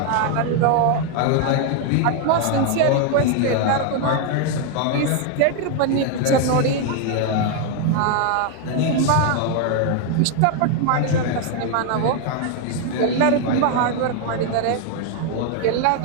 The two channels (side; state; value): both; different; correlation 0.01